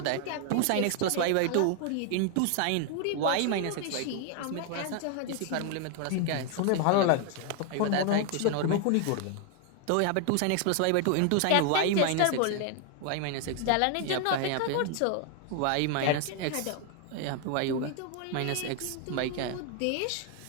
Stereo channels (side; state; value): both; different; correlation 0.00